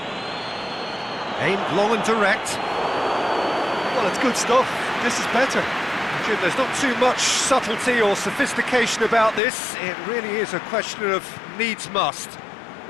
Aimed long and direct. Well, it's good stuff. This is better. Jim, there's not too much subtlety or sophistication about this. It really is a question of needs must.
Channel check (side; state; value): right; drops out; at 9.4 s